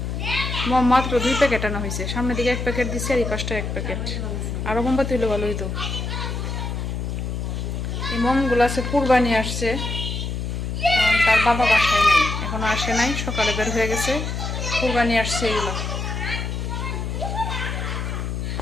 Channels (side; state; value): left; noise; hum, 3 dB below the sound